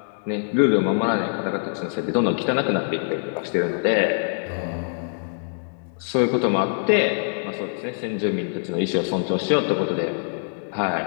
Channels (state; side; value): silent; right; digital silence